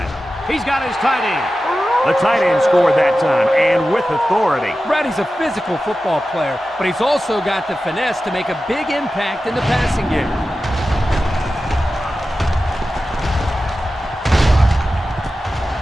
He's got his tight end. The tight end scored that time, and with authority. Brady's a physical football player, but he's also got the finesse to make a big impact in the passing game.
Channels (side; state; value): both; normal; correlation 0.93